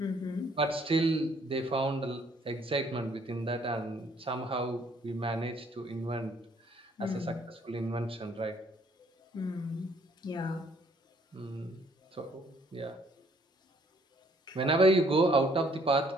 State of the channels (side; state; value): both; normal; correlation 0.63